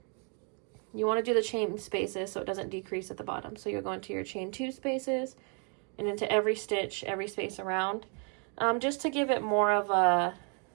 You want to do the chain spaces so it doesn't decrease at the bottom. So you're going to your chain 2 spaces and into every stitch, every space around, just to give it more of a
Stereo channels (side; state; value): left; quieter; 38.5 dB